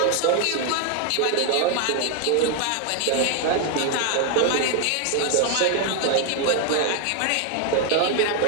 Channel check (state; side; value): different; both; correlation 0.00